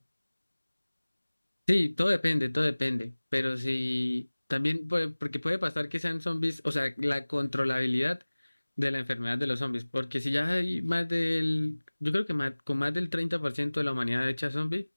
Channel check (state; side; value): inverted; both; correlation -1.00